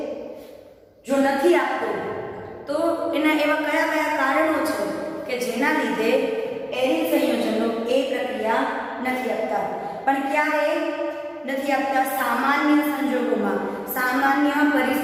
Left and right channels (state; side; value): identical; both; correlation 1.00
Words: જો નથી આપતો તો એના એવા કયા કયા કારણો છે કે જેના લીધે એરિન સંયોજનો એ પ્રક્રિયા નથી આપતા? પણ ક્યારે નથી આપતા? સામાન્ય સંજોગોમાં, સામાન્ય